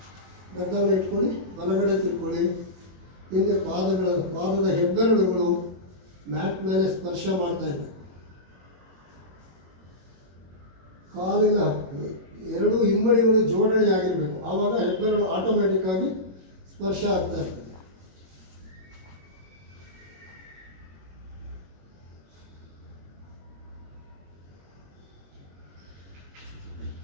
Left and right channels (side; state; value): left; late; 21 ms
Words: ಗದ್ದವನ್ನು ಇಟ್ಕೊಳ್ಳಿ. ಬಲಗಡೆ ತಿರ್ಕೊಳ್ಳಿ. ಹಿಂದೆ ಪಾದದ ಹೆಬ್ಬೆರಳುಗಳು ಮ್ಯಾಟ್ ಮೇಲೆ ಸ್ಪರ್ಶ ಮಾಡ್ತಾ ಇದೆ. ಕಾಲಿನ ಎರಡೂ ಹಿಮ್ಮಡಿಗಳು ಜೋಡಣೆ ಆಗಿರಬೇಕು. ಆವಾಗ ಹೆಬ್ಬೆರಳು ಆಟೋಮೆಟಿಕ್ ಆಗಿ ಸ್ಪರ್ಶ ಆಗ್ತಾ ಇರ್ತದೆ.